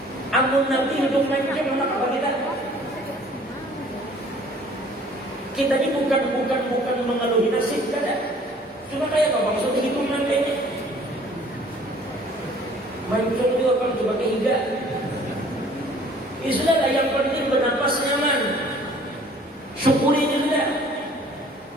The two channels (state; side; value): normal; both; correlation 0.54